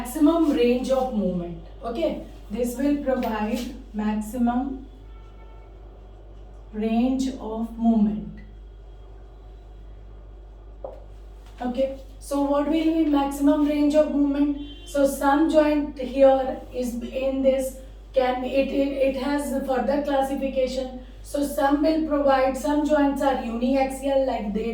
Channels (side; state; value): both; identical; correlation 1.00